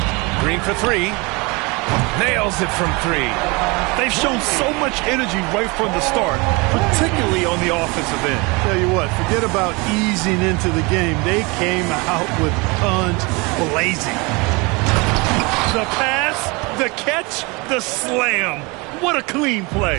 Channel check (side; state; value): left; quieter; 27.0 dB